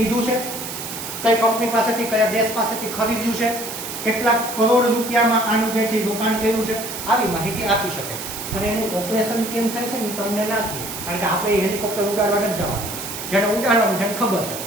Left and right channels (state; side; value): noise; right; hiss, 8 dB below the sound